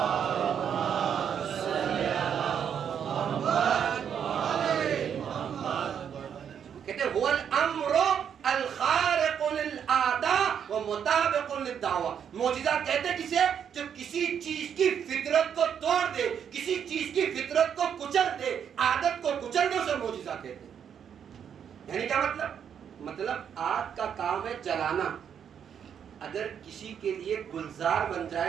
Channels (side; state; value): left; quieter; 8.2 dB